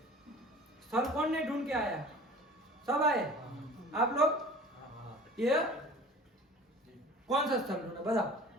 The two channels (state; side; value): normal; both; correlation 0.43